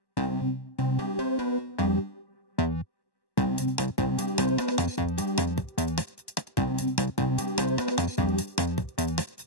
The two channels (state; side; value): late; right; 1.1 ms